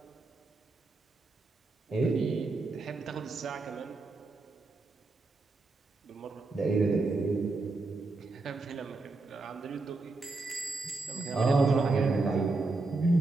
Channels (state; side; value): quieter; left; 3.5 dB